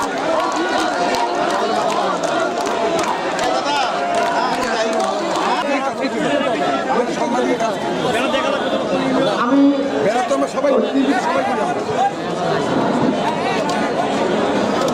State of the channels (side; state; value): both; identical; correlation 1.00